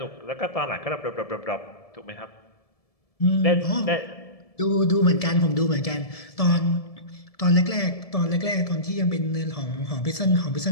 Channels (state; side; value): late; right; 1.7 ms